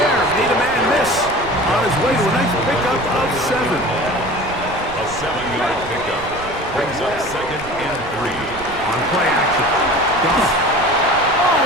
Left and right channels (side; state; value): right; noise; rumble, 14 dB below the sound